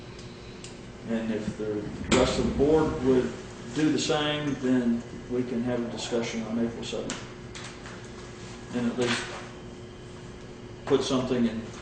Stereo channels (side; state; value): both; identical; correlation 1.00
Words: And if the rest of the board would do the same, then we can have a discussion on April 7th. And at least put something in